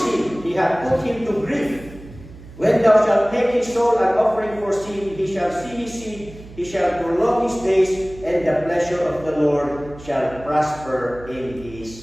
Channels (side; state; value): right; noise; hum, 18 dB below the sound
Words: him, he hath put him to grief. When thou shalt make his soul an offering for sin, he shall see his seed, he shall prolong his days, and the pleasure of the Lord shall prosper in